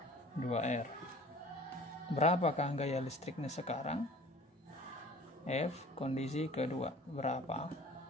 2R. Berapakah gaya listriknya sekarang? F kondisi kedua berapa?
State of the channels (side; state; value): both; normal; correlation 0.47